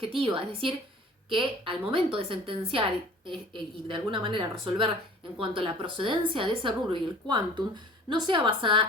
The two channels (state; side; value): normal; both; correlation 0.46